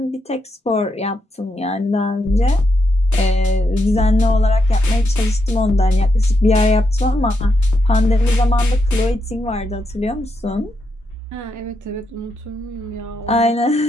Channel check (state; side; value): normal; both; correlation 0.82